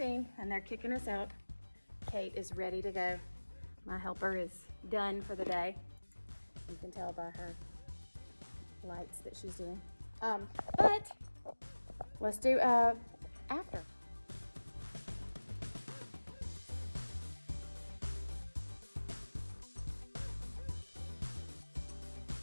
and they're kicking us out. Kate is ready to go. My helper is done for the day. You can tell by her lights that she's doing. But let's do after.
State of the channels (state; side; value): inverted; both; correlation -1.00